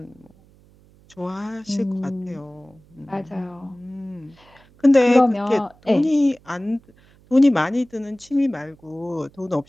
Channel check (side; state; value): right; noise; hum, 29 dB below the sound